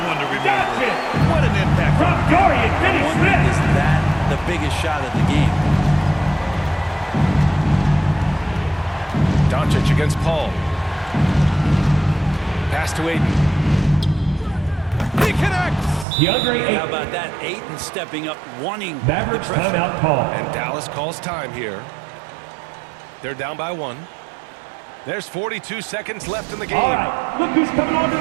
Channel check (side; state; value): left; drops out; at 16.1 s